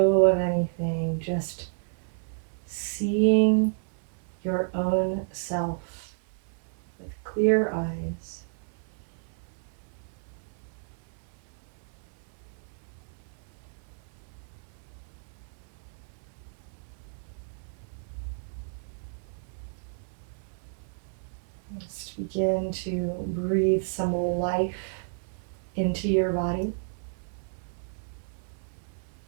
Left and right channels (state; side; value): silent; left; 57 dB below the other